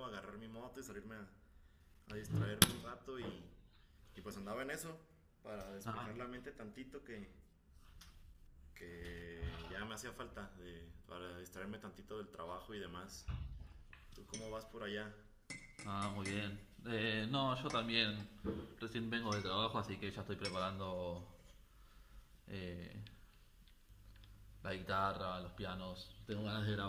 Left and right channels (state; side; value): identical; both; correlation 1.00